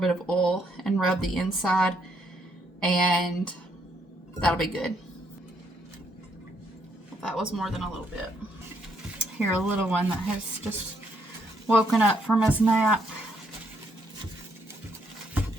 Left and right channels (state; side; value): normal; both; correlation 0.73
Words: bit of oil and rub the inside, and that'll be good. That was more than a little bit. Here, a little one that has just woken up from his nap.